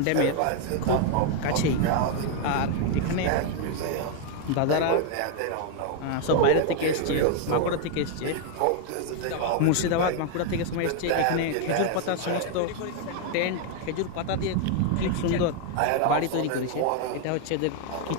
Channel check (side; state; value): both; different; correlation 0.00